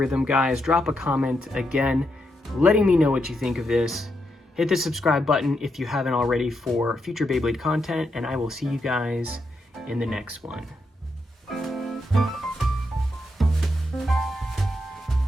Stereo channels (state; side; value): normal; both; correlation 0.82